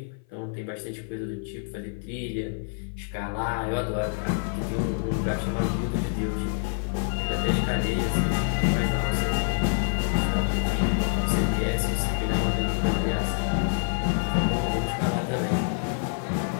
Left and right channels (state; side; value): silent; right; 56 dB below the other